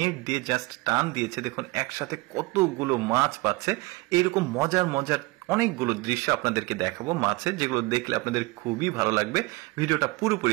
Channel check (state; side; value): quieter; left; 23.2 dB